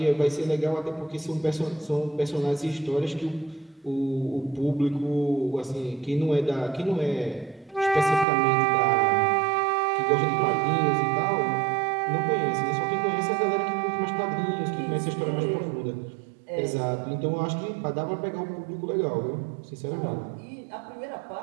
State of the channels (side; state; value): left; drops out; at 8.2 s